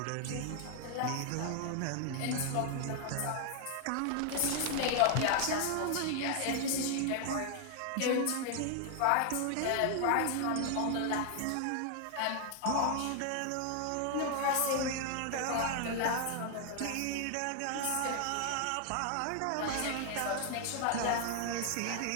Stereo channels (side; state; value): both; different; correlation 0.00